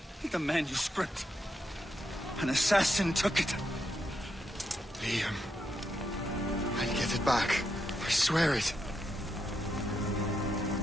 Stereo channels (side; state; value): both; normal; correlation 0.82